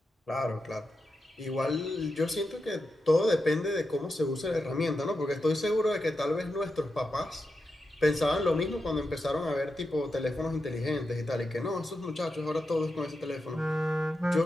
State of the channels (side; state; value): both; normal; correlation 0.88